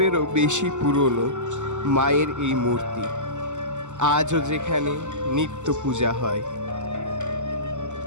বেশি পুরনো মায়ের এই মূর্তি আজও যেখানে নিত্য পূজা হয়।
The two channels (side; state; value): left; late; 0.84 ms